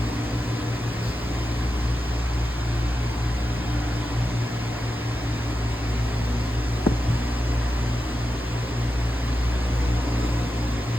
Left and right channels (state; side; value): normal; both; correlation 0.90